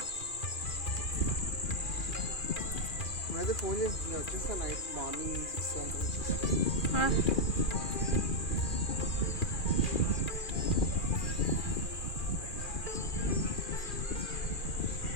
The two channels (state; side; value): late; right; 2.4 ms